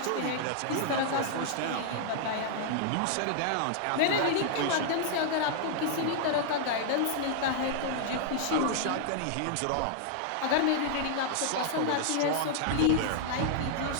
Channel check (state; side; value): different; both; correlation -0.01